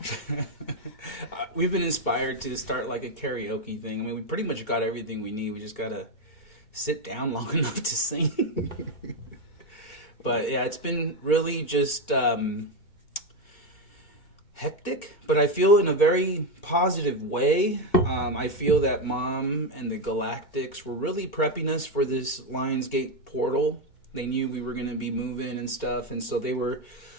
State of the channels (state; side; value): late; right; 2.1 ms